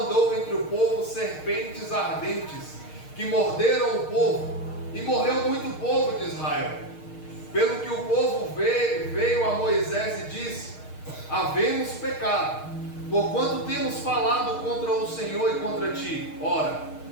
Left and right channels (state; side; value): late; right; 6.5 ms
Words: entre o povo serpentes ardentes, que morderam o povo, e morreu muito povo de Israel. Pelo que o povo veio a Moisés e disse: Havemos pecado, porquanto temos falado contra o Senhor e contra ti. Ora